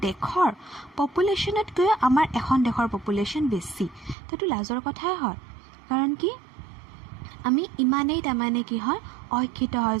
দেশৰ পপুলেশ্যনতকৈ আমাৰ এখন দেশৰ পপুলেশ্যন বেছি। তো এইটো লাজৰ কথাই হয়, কাৰণ কি আমি ইমানেই তাৰমানে কি হয় অশিক্ষিত হয়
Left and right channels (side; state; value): left; drops out; at 4.2 s